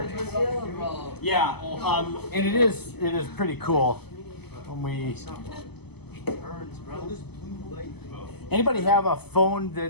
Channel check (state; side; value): late; right; 0.97 ms